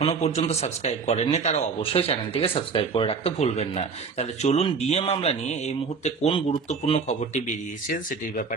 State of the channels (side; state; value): left; quieter; 5.2 dB